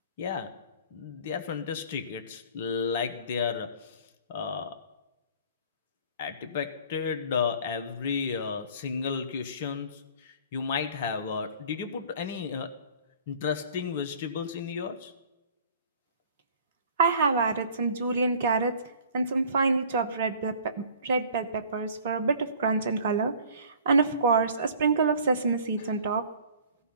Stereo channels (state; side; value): inverted; both; correlation -0.49